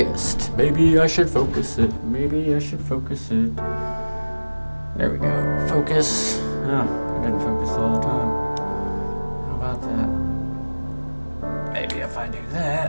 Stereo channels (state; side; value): inverted; both; correlation -1.00